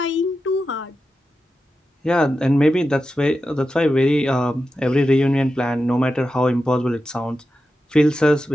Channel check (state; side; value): normal; both; correlation 0.90